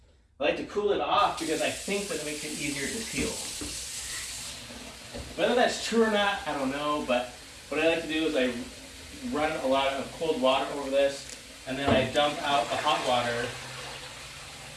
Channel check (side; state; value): both; identical; correlation 1.00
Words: like to cool it off because I think that it makes it easier to peel. Whether that's true or not, I don't know, but what I like to do is I run a lot of cold water over this, and then I dump out the hot water,